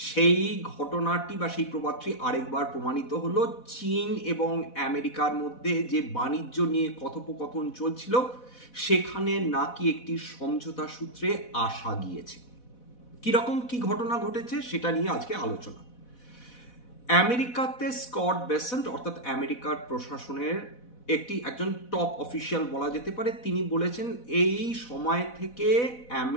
সেই ঘটনাটি বা সেই প্রবাদটি আরেকবার প্রমাণিত হলো। চীন এবং আমেরিকার মধ্যে যে বাণিজ্য নিয়ে কথোপকথন চলছিল সেখানে নাকি একটি সমঝোতা সূত্রে আসা গিয়েছে। কিরকম কি ঘটনা ঘটেছে সেটা নিয়ে আজকে আলোচনা। আমেরিকাতে স্কট বেসেন্ট অর্থাৎ আমেরিকার প্রশাসনের একজন টপ অফিসিয়াল বলা যেতে পারে, তিনি বলেছেন এই সময় থেকে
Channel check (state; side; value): late; right; 4.1 ms